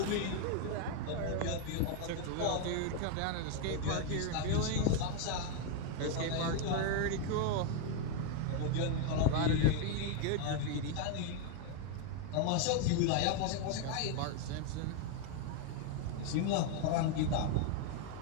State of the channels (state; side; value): different; both; correlation 0.01